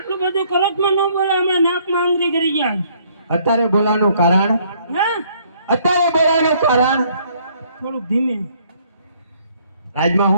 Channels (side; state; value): both; inverted; correlation -0.64